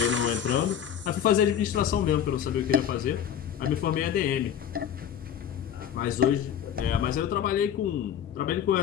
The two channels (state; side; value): quieter; right; 9.3 dB